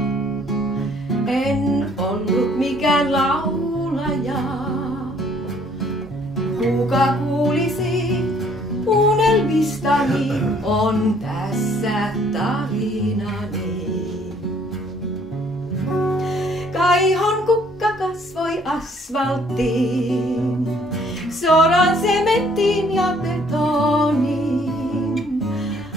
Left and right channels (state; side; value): normal; both; correlation 0.61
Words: en ollut mikään laulaja. Kuka kuulisi unelmistani, on tässä tarinani. Kaihon kukka kasvoi asfalttiin, soran sementtiin ja betoniin.